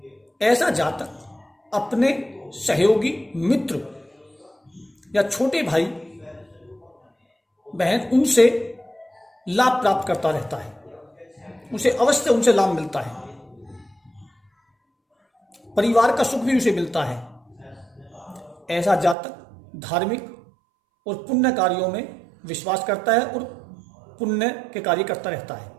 ऐसा जातक अपने सहयोगी, मित्र या छोटे भाई बहन, उनसे लाभ प्राप्त करता रहता है, उसे अवश्य उनसे लाभ मिलता है, परिवार का सुख भी उसे मिलता है। ऐसा जातक धार्मिक और पुण्य कार्यों में विश्वास करता है और पुण्य के कार्य करता रहता है।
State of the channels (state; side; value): drops out; left; at 19.2 s